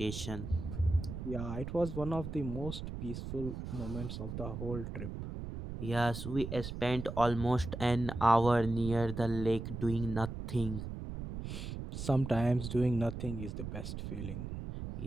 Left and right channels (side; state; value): right; noise; rumble, 7 dB below the sound